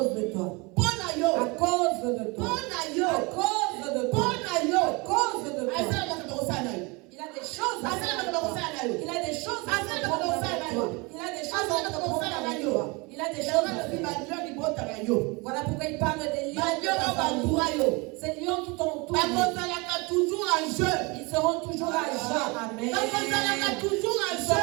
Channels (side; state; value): left; quieter; 27.3 dB